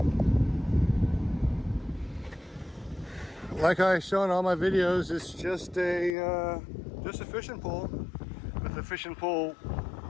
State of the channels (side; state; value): right; drops out; at 6.2 s